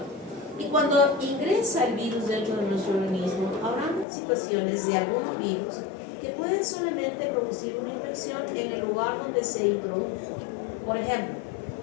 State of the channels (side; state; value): right; drops out; at 4.0 s